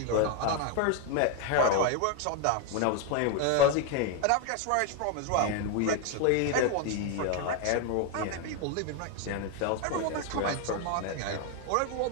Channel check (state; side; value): different; both; correlation 0.01